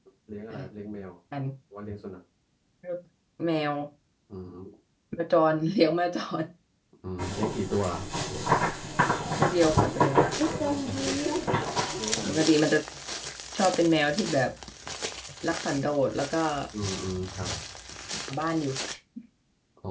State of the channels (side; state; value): both; identical; correlation 1.00